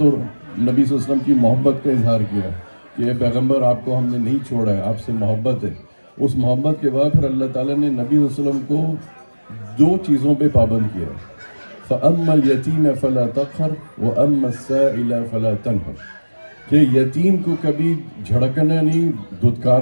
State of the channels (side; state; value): both; inverted; correlation -1.00